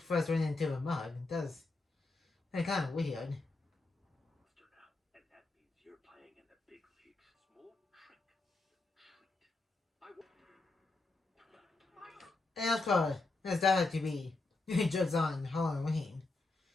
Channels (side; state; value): right; quieter; 3.4 dB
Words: ran into the mug? That's kind of weird. And of course, there's that to be jokes on Halloween.